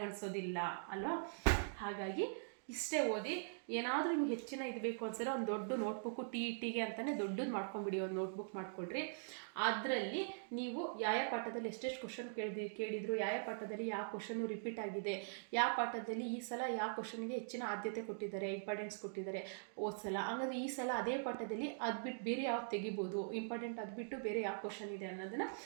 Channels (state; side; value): silent; left; digital silence